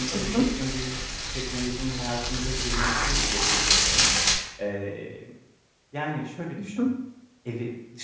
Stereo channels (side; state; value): both; identical; correlation 1.00